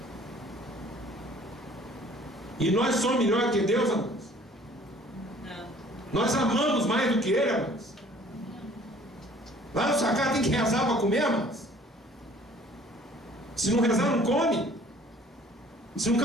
E nós somos melhor que Deus, amor? Não. Nós amamos mais do que Ele, amor? Lá na sua casa tem que rezar para comer, amor? Se não rezar, não come. Se não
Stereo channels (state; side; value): normal; both; correlation 0.54